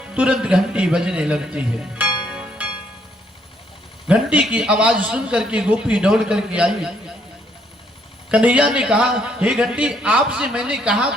तुरंत घंटी बजने लगती है। घंटी की आवाज सुन करके गोपी दौड़ करके आई। कन्हैया ने कहा, हे घंटी, आपसे मैंने कहा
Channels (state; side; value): normal; both; correlation 0.70